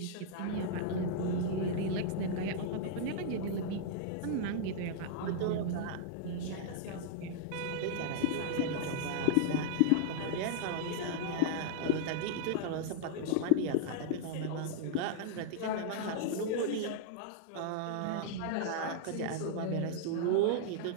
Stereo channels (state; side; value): different; both; correlation -0.01